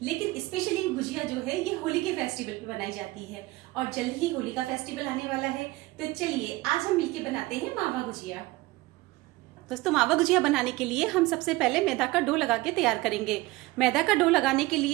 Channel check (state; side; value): quieter; left; 20.2 dB